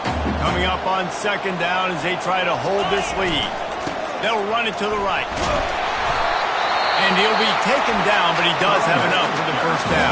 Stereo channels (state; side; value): identical; both; correlation 1.00